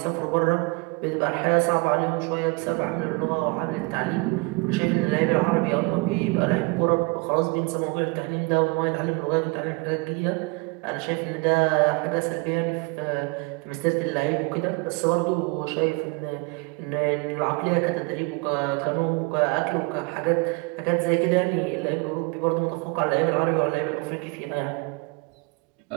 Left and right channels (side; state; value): left; quieter; 27.7 dB